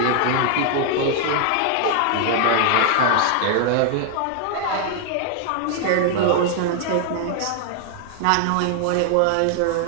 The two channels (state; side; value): different; both; correlation 0.00